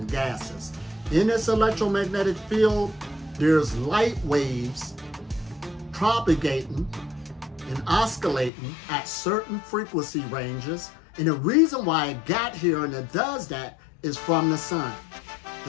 gases. In this electromagnetic field, there's light waves propagating and oscillating at certain frequency ranges. And the reason why it got here and it does that is from the sun.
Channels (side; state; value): right; drops out; at 8.5 s